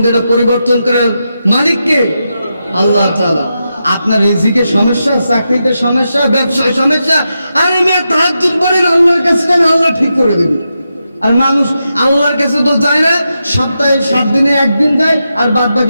এটা পরিবর্তন করার মালিক কে? আল্লাহ তাআলা। আপনার রিজিকে সমস্যা, চাকরিতে সমস্যা, ব্যবসায় সমস্যা, আরে মেয়ে তাহাজ্জুদ পড়েন, আল্লাহর কাছে যান, আল্লাহ ঠিক করে দেবে। আর মানুষ আল্লাহর কাছে তো যায় না, সপ্তাহে 7 দিনে একদিন যায় আর বাদ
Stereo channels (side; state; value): both; inverted; correlation -0.87